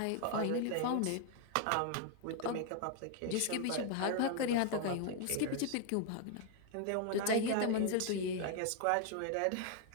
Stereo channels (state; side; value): different; both; correlation 0.00